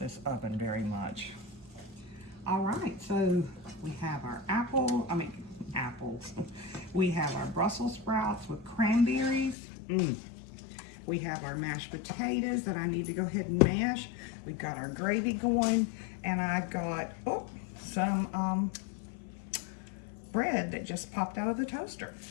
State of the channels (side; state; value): right; drops out; at 9.6 s